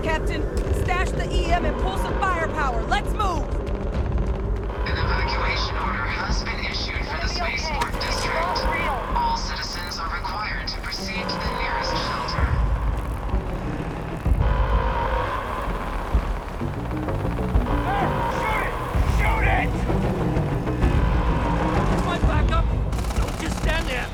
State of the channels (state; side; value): identical; both; correlation 1.00